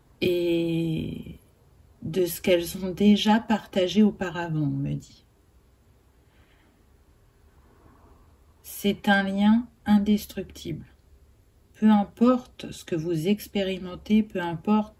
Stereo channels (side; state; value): both; identical; correlation 1.00